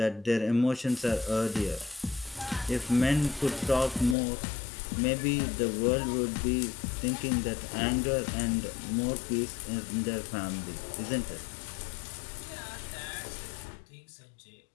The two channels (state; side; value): drops out; right; at 4.2 s